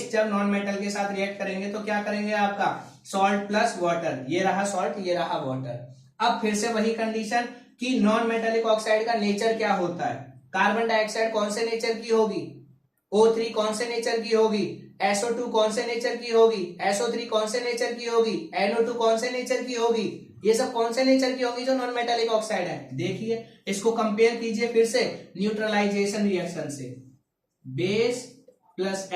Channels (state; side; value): identical; both; correlation 1.00